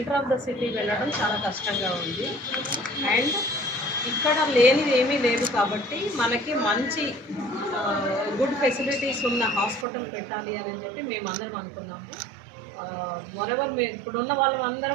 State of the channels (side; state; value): left; drops out; at 9.9 s